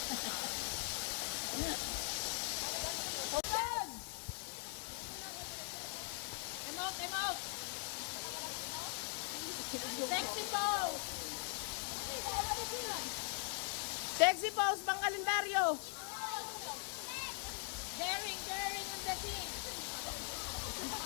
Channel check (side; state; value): right; silent; 50 dB below the other